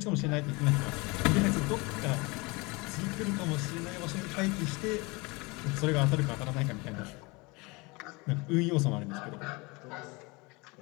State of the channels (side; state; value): right; quieter; 25.9 dB